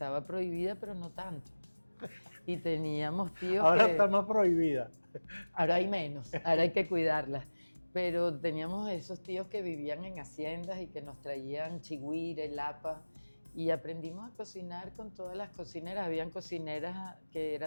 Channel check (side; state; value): both; inverted; correlation -1.00